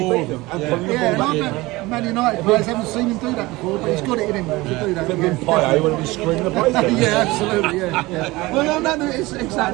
Yeah, and I bet Man United players haven't seen him do that before, but he's got it in him to do that. Payet when he was screaming the place. Yeah, absolutely, yeah. Well, no, it's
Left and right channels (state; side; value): quieter; left; 20.9 dB